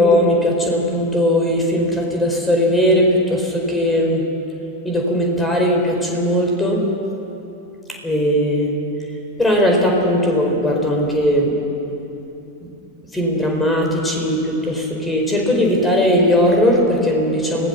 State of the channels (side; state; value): both; normal; correlation 0.23